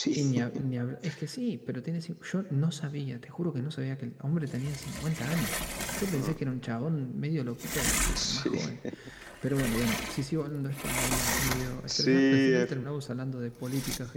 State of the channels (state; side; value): identical; both; correlation 1.00